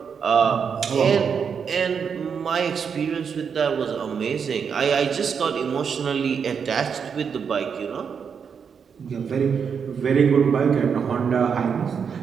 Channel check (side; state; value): left; quieter; 6.6 dB